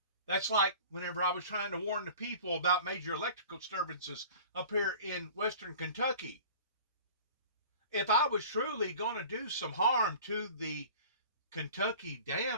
That's like whenever I was trying to warn the people about major electrical disturbances up here in western Kentucky. If I was truly going to do some harm to the Kentucky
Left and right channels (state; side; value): inverted; both; correlation -0.42